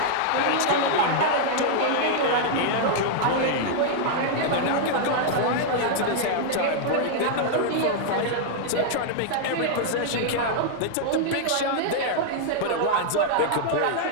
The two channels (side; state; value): both; different; correlation -0.01